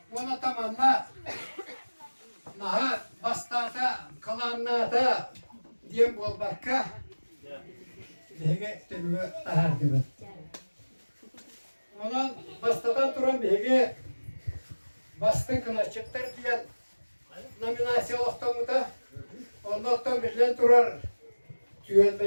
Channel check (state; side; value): inverted; both; correlation -1.00